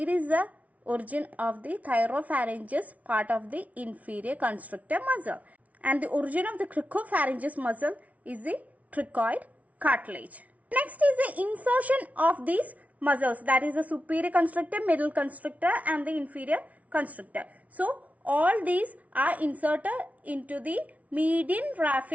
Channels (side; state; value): left; late; 0.069 ms